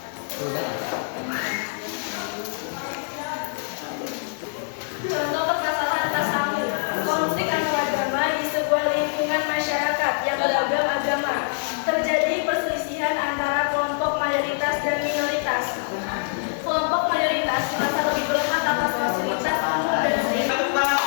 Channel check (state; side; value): silent; right; digital silence